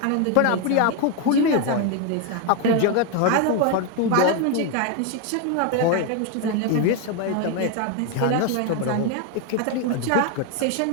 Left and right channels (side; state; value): both; different; correlation 0.01